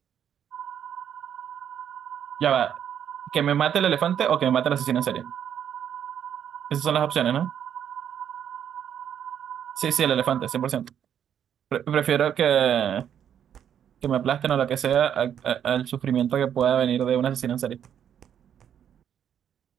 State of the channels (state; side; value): quieter; left; 9.2 dB